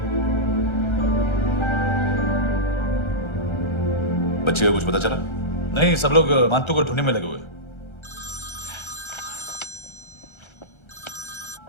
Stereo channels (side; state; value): right; late; 1.3 ms